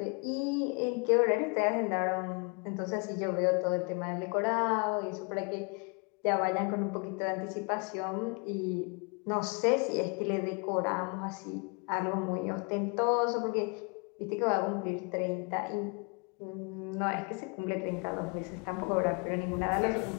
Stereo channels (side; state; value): right; quieter; 34.2 dB